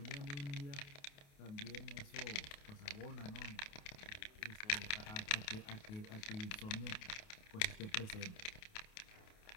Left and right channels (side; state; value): right; late; 28 ms